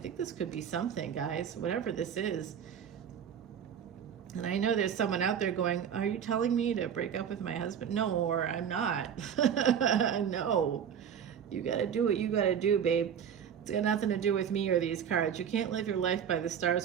this could be something, guys, whatever this is. And I know there's someone out there going, are you telling me to break up with my husband? No, or I'm not. No. You got to do what you got to do, babe. It's got nothing to do with me or these cards. You can't live your life by the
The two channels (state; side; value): quieter; left; 8.2 dB